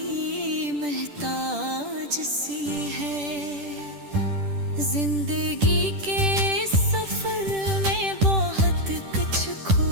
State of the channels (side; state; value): left; late; 10 ms